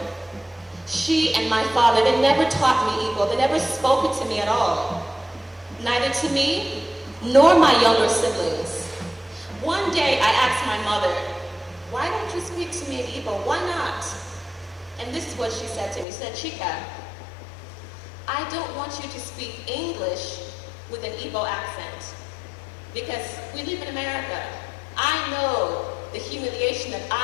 she and my father, they never taught me Igbo. They never spoke it to me at all. Neither to me, nor my younger siblings. One day I asked my mother, why don't you speak to me in Igbo? Why not? And this is what she said to me. She said, Chika, I don't want you to speak English with an Igbo accent because we live in America. I know the humiliation that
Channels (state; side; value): drops out; right; at 16.1 s